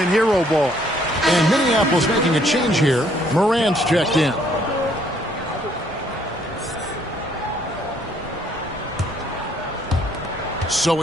hero ball. And Minneapolis making a change here. Morant's checked in. So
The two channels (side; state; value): both; normal; correlation 0.65